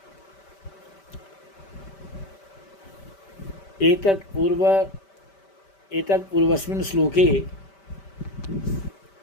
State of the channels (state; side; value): late; right; 5.1 ms